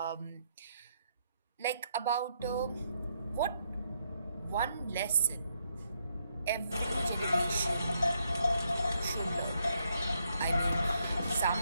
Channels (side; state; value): both; inverted; correlation -0.76